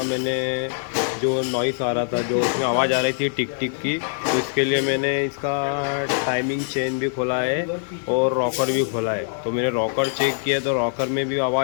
मैंने जो नॉइस आ रहा था, जो उसमें आवाज़ आ रही थी टिक टिक की, तो इसके लिए मैंने इसका टाइमिंग चेन भी खोला है और रॉकर भी खोला है। तो मैंने रॉकर चेक किया तो रॉकर में भी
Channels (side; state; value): right; silent; digital silence